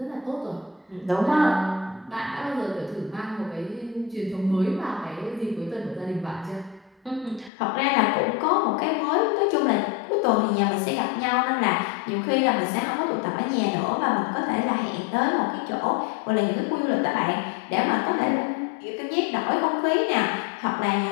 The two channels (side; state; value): right; drops out; at 7.5 s